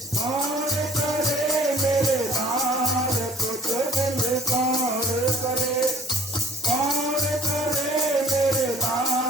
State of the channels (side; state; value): both; normal; correlation 0.52